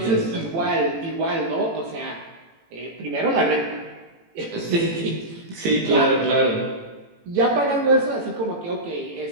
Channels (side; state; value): left; late; 18 ms